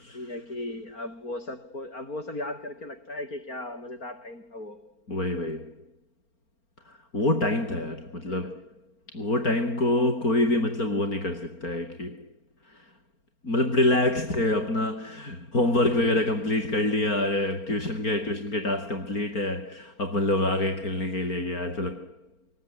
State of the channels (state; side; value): late; right; 4.4 ms